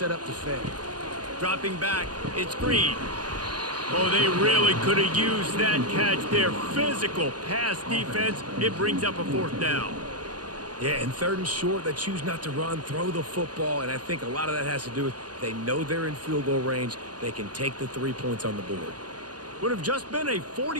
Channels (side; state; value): left; late; 0.70 ms